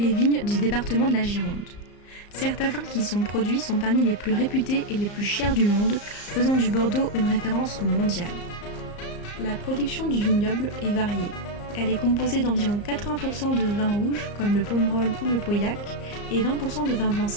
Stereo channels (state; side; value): late; right; 34 ms